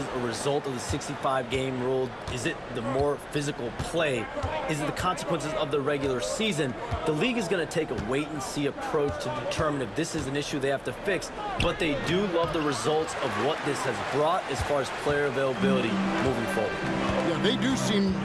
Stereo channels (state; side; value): identical; both; correlation 1.00